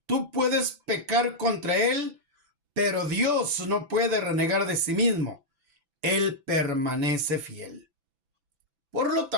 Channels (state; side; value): late; left; 6.0 ms